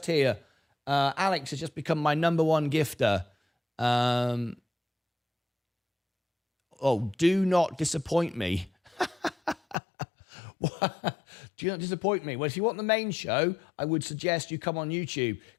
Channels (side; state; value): right; drops out; at 9.8 s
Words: here. Alex has just become my number one gifter. Do not disappoint me. Do not disappoint me. Well, if you want the main show, I would suggest you come on YouTube.